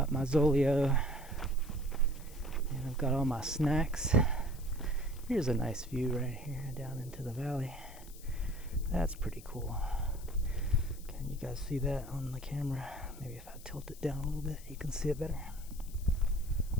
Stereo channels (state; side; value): noise; left; hiss, 19 dB below the sound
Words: my Zolio, and I've got all my snacks. Here's a nice view right here down into the valley. That's pretty cool. Can you guys see that on the camera? Maybe if I tilt it down a little bit, you can see it better.